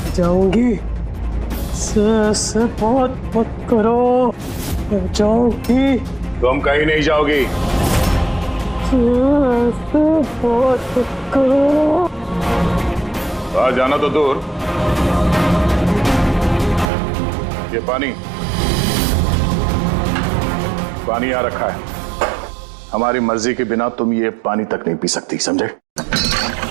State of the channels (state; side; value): drops out; left; at 16.9 s